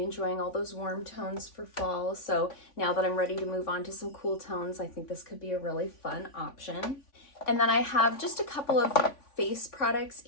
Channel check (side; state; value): right; late; 3.5 ms